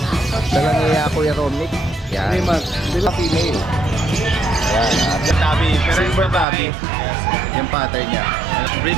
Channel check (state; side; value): drops out; left; at 6.5 s